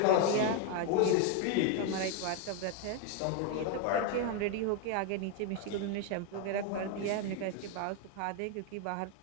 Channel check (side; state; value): both; different; correlation 0.01